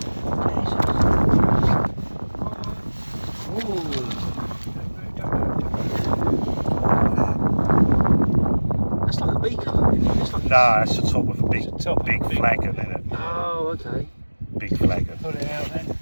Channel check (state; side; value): inverted; both; correlation -1.00